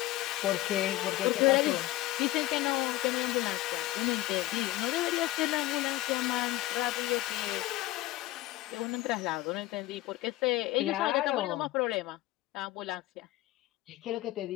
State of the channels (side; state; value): right; quieter; 17.0 dB